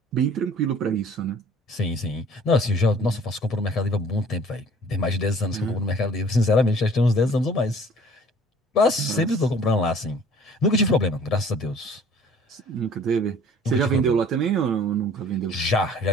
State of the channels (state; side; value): normal; both; correlation 0.52